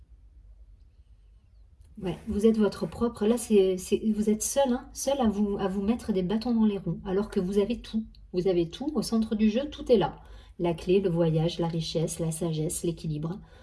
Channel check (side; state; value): both; identical; correlation 1.00